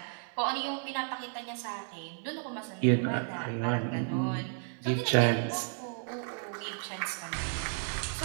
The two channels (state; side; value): silent; left; 56 dB below the other